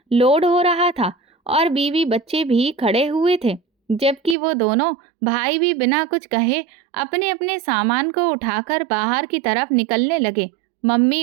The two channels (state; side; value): drops out; left; at 4.4 s